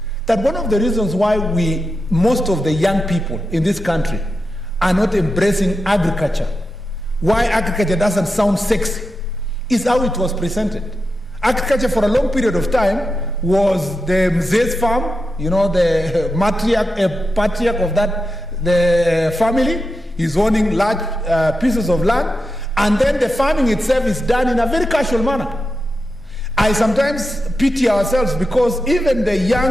that one of the reasons why most of the young people in this country are not embracing agriculture, why agriculture doesn't sound sexy, is how it was presented. Agriculture for a long period of time was the mzee's farm, the patriarch of the family is owning large pieces of land, and then the farming itself is done in a very casual manner. I sometimes pity ourselves because even the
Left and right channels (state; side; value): normal; both; correlation 0.89